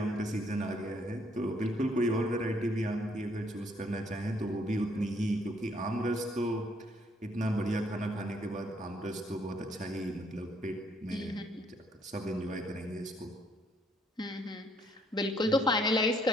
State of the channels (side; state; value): both; normal; correlation 0.67